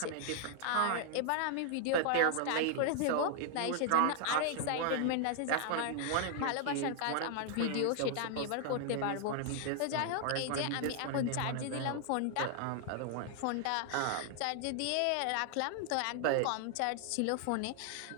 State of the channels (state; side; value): different; both; correlation 0.00